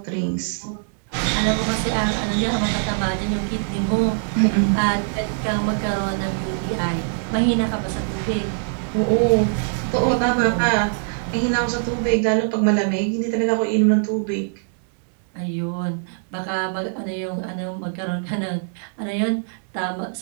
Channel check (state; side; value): silent; left; digital silence